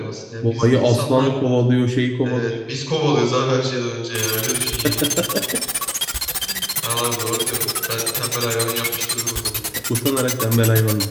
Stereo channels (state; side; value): identical; both; correlation 1.00